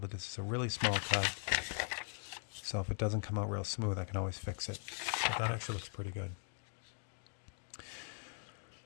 this is a really small cut. So if it doesn't come out real smooth, I can always fix it. But that actually looks pretty good.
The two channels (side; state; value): right; silent; 51 dB below the other